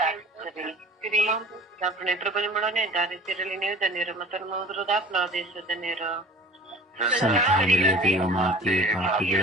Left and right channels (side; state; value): both; normal; correlation 0.43